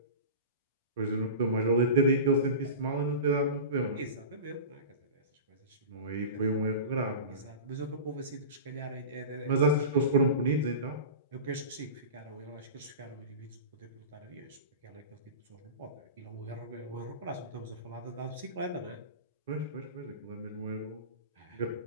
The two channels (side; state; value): both; inverted; correlation -0.31